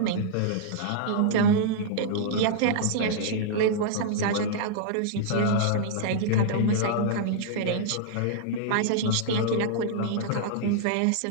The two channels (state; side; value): different; both; correlation -0.01